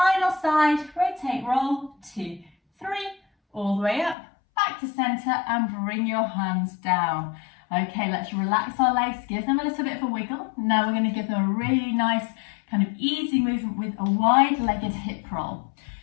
side. Rotate, roll. 2, 3, all the way up, back to center, and bring your hands down. Okay, let's relax our legs, give them a little bit of a wiggle. Now we're going to give them a really nice kind of easy movement with a wide-legged hip roll.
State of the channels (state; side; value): drops out; right; at 4.2 s